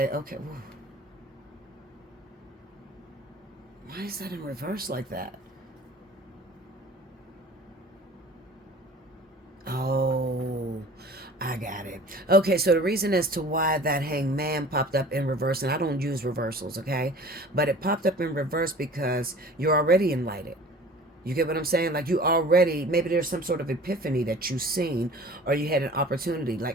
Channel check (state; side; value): normal; both; correlation 0.44